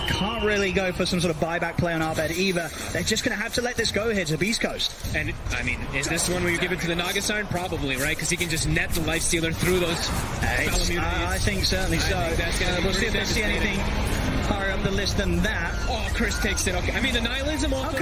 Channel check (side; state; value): both; identical; correlation 1.00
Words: really go for some sort of buyback play on our bed either. They're just going to have to let this go here to Beast Coast. And, I mean, is this one where you give it to the Naga Siren? Probably, right? Because he can just net the Lifestealer through those I think certainly so. We'll see if they see anything higher up the list than that. Oh, Chris takes it. Okay. I mean, the Nihilism off